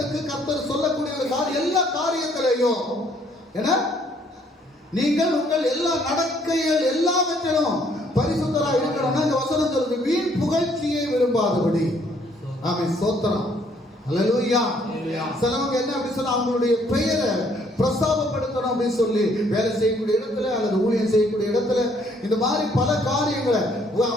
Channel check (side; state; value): both; normal; correlation 0.65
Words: கர்த்தர் சொல்லக்கூடிய எல்லா காரியத்திலையும் என்ன, நீங்கள் உங்கள் எல்லா நடக்கைகள் எல்லாவற்றிலும் பரிசுத்தராக இருக்கணும்னா இந்த வசனம் சொல்லுது, வீண் புகழ்ச்சியை விரும்பாதபடி. ஆமென். ஸ்தோத்திரம். ஹல்லேலூயா. சிலவங்க என்ன அப்படி சொன்னா, அவங்களுடைய பெயரை பிரஸ்தாபப்படுத்தணும் அப்படின்னு சொல்லி வேலை செய்யக்கூடிய இடத்துல அல்லது ஊழியம் செய்யக்கூடிய இடத்துல இந்த மாதிரி பல காரியங்களை